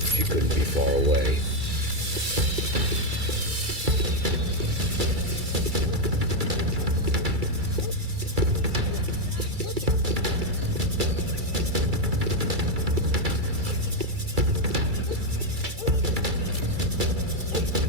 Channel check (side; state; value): left; late; 2.3 ms